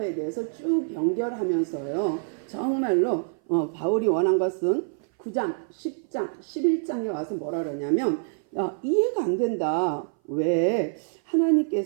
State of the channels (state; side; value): silent; left; 58 dB below the other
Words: 대해서 쭉 연결하면서요. 정말로 바울이 원한 것은 9장, 10장, 11장에 와서 뭐라 그러냐면 이해가 안 된다. 왜